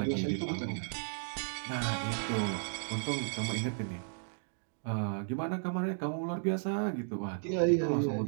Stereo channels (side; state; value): left; silent; digital silence